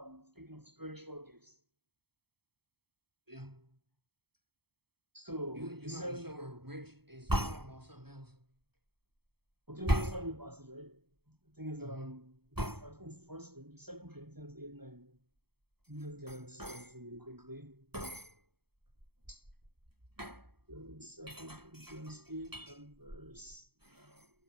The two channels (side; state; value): left; late; 0.97 ms